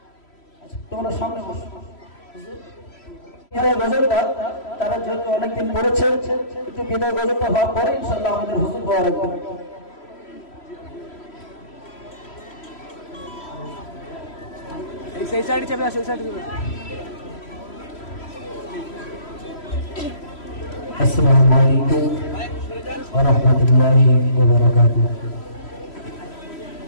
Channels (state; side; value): late; right; 3.0 ms